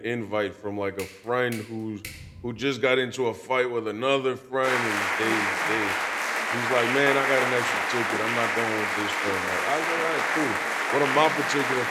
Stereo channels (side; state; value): both; identical; correlation 1.00